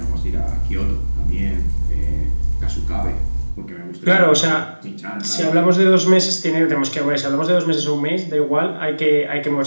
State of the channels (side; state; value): both; inverted; correlation -1.00